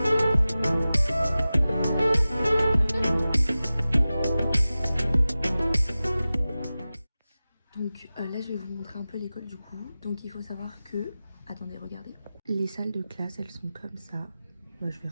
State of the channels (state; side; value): inverted; both; correlation -0.96